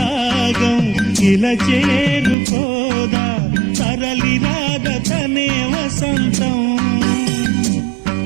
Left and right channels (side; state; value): left; drops out; at 2.4 s